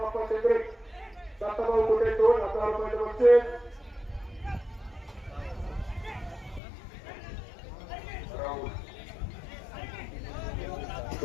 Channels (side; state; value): right; drops out; at 6.6 s